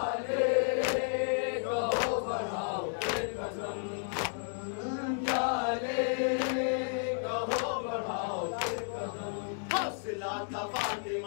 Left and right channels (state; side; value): silent; right; digital silence